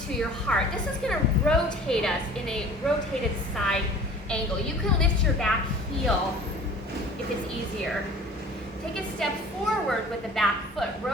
to your heart. This is going to rotate us in a rotated side angle. You can lift your back heel if it's easier. Take a step forward with the back foot,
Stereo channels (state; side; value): normal; both; correlation 0.45